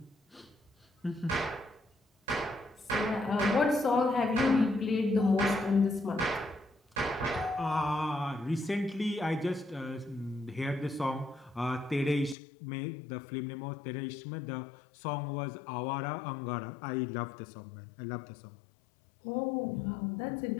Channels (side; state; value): right; drops out; at 12.4 s